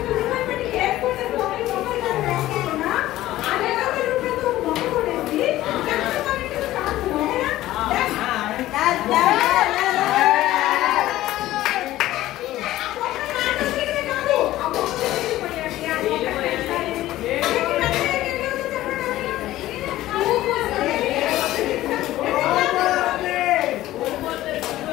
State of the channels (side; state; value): right; quieter; 15.3 dB